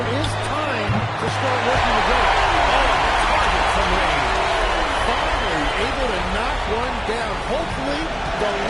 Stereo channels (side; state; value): both; identical; correlation 1.00